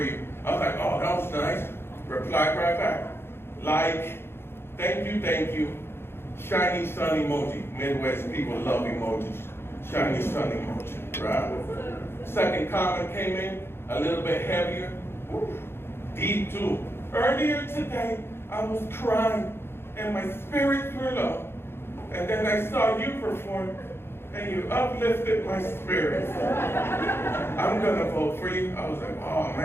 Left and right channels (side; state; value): right; late; 0.11 ms